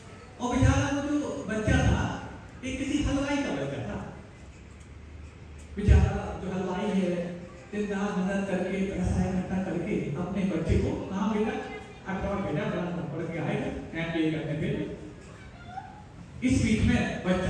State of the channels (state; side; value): identical; both; correlation 1.00